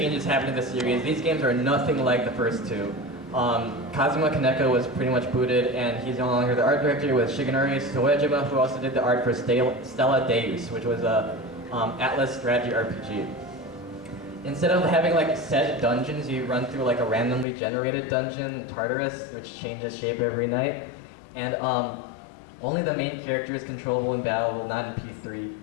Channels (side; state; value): right; drops out; at 17.4 s